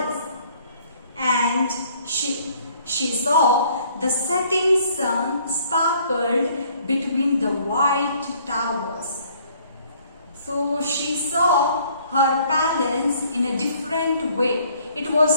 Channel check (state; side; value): inverted; both; correlation -0.60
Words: and she saw the setting sun sparkled between the white towers. So she saw her palace in a different way. It